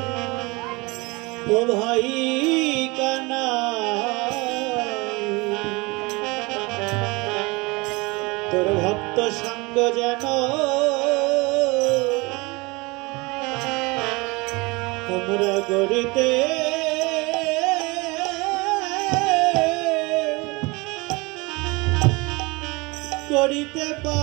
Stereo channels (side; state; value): left; quieter; 25.4 dB